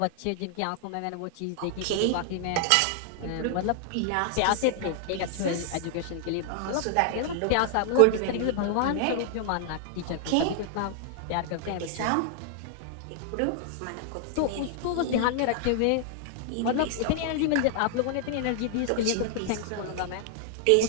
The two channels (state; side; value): different; both; correlation -0.01